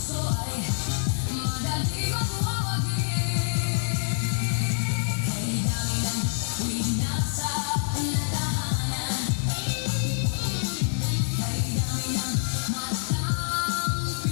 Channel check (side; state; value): right; silent; 61 dB below the other